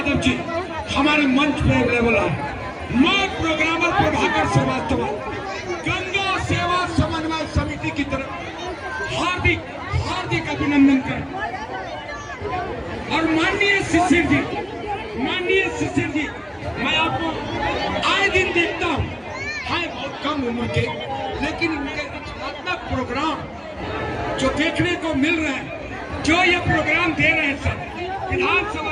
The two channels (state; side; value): identical; both; correlation 1.00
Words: जी हमारे मंच पे अवेलेबल है। मैं प्रोग्रामर प्रभाकर श्रीवास्तव गंगा सेवा समन्वय समिति की तरफ हार्दिक हार्दिक अभिनंदन करें। और माननीय शिशिर जी, मैं आपको आए दिन देखता हूँ, है बहुत कम उम्र के, लेकिन इनके रचनात्मक प्रोग्राम जो देखने को मिल रहे हैं, जो ये प्रोग्राम दे रहे हैं सर